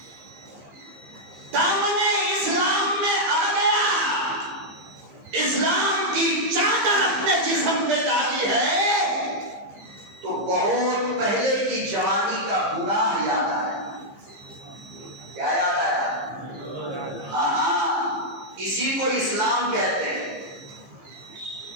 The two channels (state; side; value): late; left; 15 ms